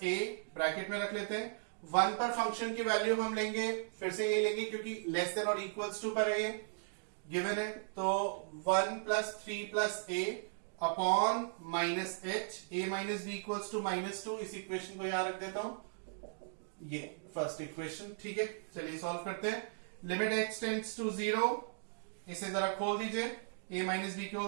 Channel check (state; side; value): silent; left; digital silence